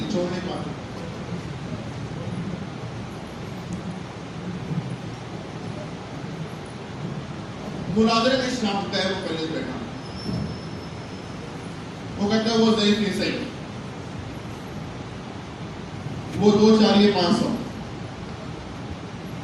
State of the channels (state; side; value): identical; both; correlation 1.00